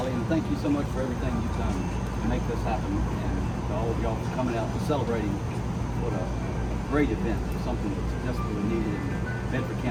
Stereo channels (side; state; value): both; identical; correlation 1.00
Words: and thank you so much for everything you've done to make this happen, and to all all of y'all for coming out and celebrating what a great event, something that's desperately needed in Bedford